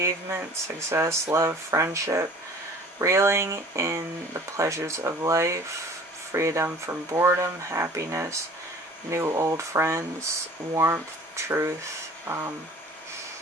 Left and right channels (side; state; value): both; normal; correlation 0.47